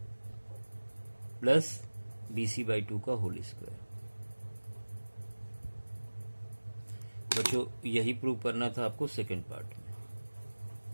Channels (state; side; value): inverted; both; correlation -1.00